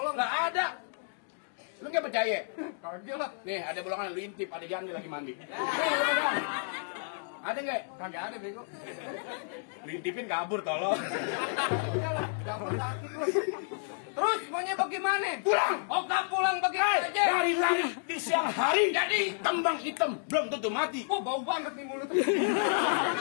Nggak ada. Lu nggak percaya? Kagak lah. Nih ada bolongan lu intip, ada janda lagi mandi. Ada nggak? Kagak ada bego. Lu intipin kabur tolong. Terus maunya bagaimana? Pulang. Oh gak pulang begitu aja. Dari lari di siang hari. Jadi kembang hitam belum tentu mati. Bau banget nih mulut.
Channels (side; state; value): right; silent; digital silence